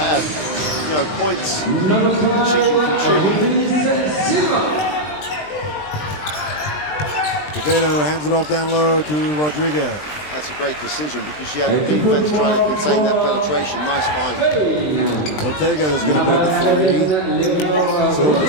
you know, points that she can contribute. Quevedo hands it off down low to Rodriguez. That's a great decision because she had the defense trying to contain that penetration. Nice find. Ortega is going to put up a three.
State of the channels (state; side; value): late; right; 20 ms